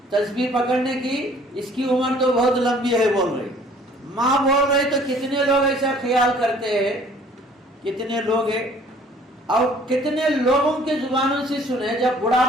تسبیح پکڑنے کی، اس کی عمر تو بہت لمبی ہے. بول رہی ماں بول رہی تو کتنے لوگ ایسا خیال کرتے ہیں، کتنے لوگ ہیں. اور کتنے لوگوں کے زبانوں سے سنے جب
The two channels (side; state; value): both; normal; correlation 0.55